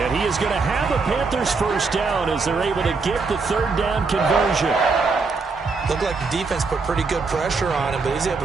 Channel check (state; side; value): quieter; left; 4.3 dB